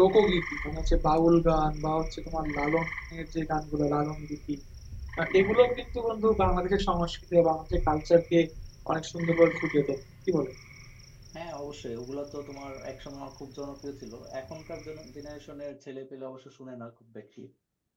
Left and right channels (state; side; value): identical; both; correlation 1.00